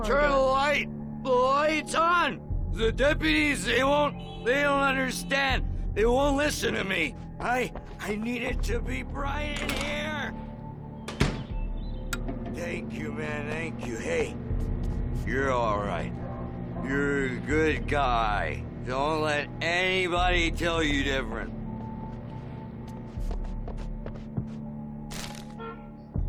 turn the corridor. light? The light's on! The deputies, they don't understand. They won't listen to me. I need it to be bright in here. Thank you, man, thank you. Hey, you're all right. You're a good guy. Don't let anybody tell you different.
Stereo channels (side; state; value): both; identical; correlation 1.00